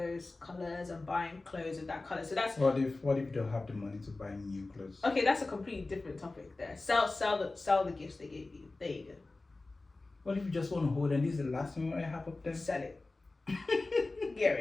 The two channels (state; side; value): quieter; right; 3.3 dB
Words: colors and buying clothes with that color. So that's what if you don't have the money to buy new clothes? Okay, that's a completely different topic there. Sell the gifts they gave you. There you go. What if you just want to hold and this is the last thing I have up there? Sell it. Get